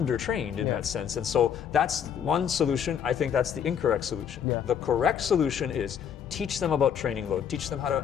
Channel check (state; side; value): quieter; right; 8.2 dB